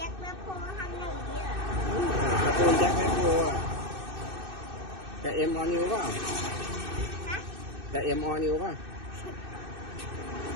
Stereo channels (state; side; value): late; left; 2.6 ms